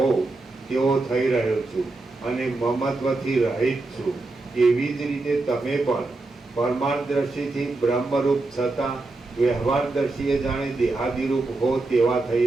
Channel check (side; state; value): left; quieter; 3.3 dB